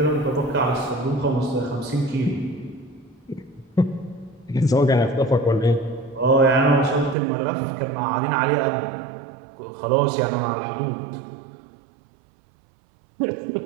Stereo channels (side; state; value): left; drops out; at 7.2 s